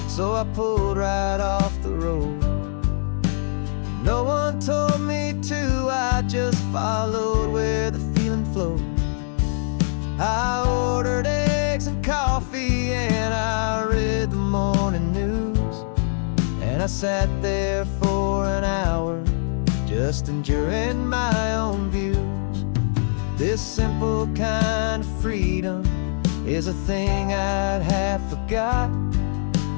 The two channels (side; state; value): right; silent; 63 dB below the other